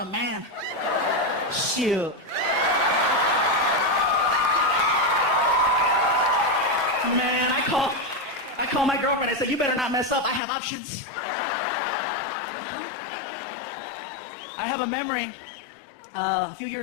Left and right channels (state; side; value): drops out; right; at 10.4 s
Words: man. Shoot. Man, I called my girlfriend. I said, you better not mess up. I have options. I have a memory. A few